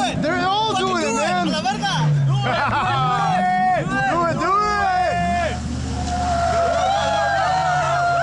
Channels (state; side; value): identical; both; correlation 1.00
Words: it. They're all doing it, man. A la verga. Do it, do it.